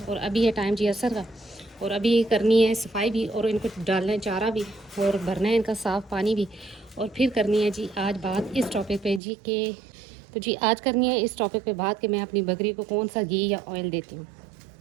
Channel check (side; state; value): left; drops out; at 9.2 s